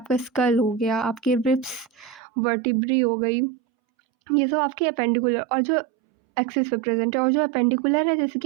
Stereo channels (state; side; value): drops out; left; at 2.2 s